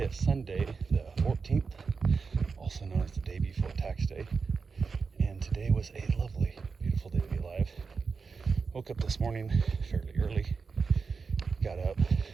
is Sunday the 14th, also known as the day before tax day, and today was a lovely, beautiful day to be alive. Woke up this morning fairly early, got up,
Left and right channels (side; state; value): left; quieter; 5.0 dB